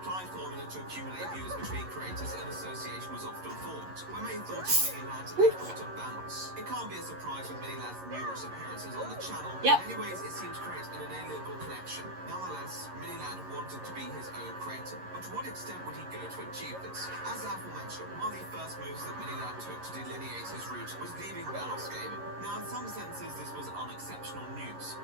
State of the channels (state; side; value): late; left; 11 ms